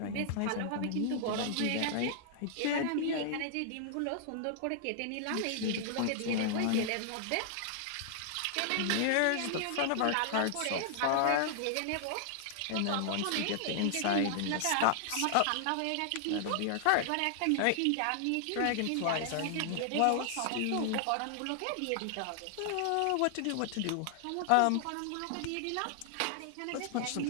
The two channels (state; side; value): different; both; correlation -0.01